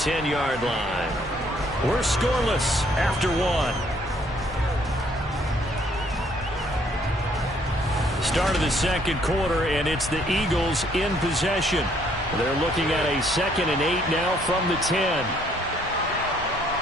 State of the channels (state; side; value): normal; both; correlation 0.66